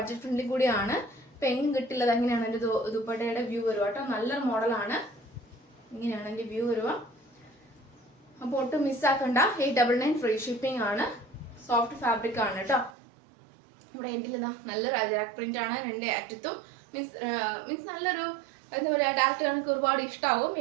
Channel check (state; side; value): drops out; left; at 13.0 s